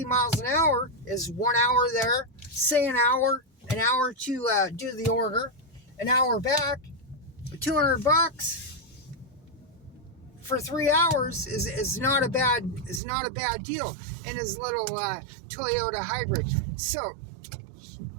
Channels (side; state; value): left; drops out; at 13.0 s